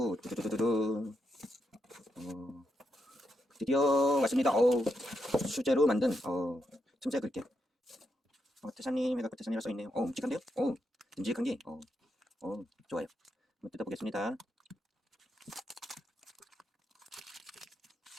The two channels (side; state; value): both; normal; correlation 0.81